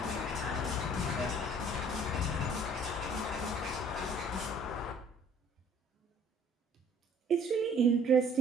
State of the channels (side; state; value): both; normal; correlation 0.56